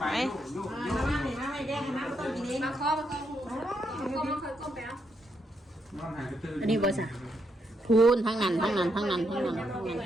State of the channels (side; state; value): both; normal; correlation 0.79